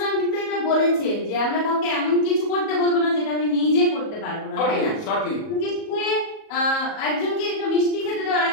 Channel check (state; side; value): late; right; 37 ms